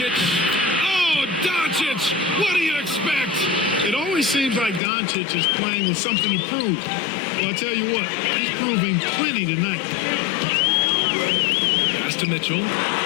Oh, Doncic! What do you expect? It always seems like Doncic is playing with something to prove. Well, I'll tell you what, he's proving plenty tonight. Pass to Mitchell.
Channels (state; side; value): drops out; right; at 4.8 s